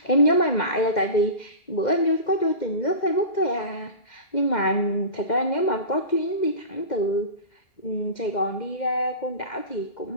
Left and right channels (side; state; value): right; late; 2.1 ms